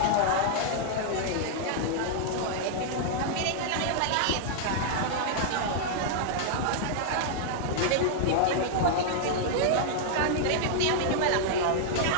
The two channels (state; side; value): different; both; correlation -0.01